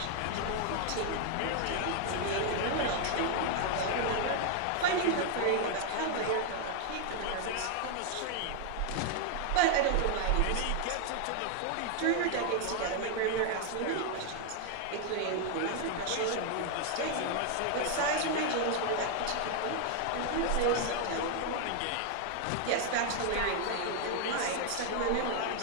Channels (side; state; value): both; different; correlation 0.00